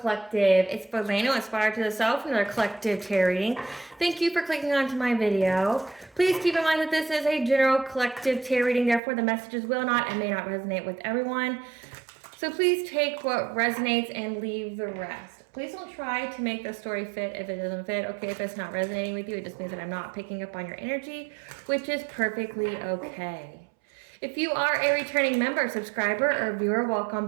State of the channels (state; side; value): drops out; left; at 9.0 s